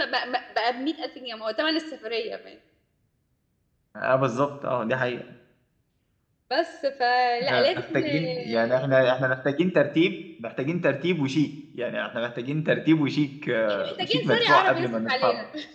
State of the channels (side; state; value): both; identical; correlation 1.00